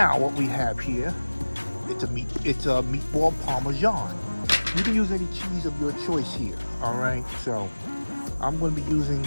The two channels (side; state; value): both; inverted; correlation -1.00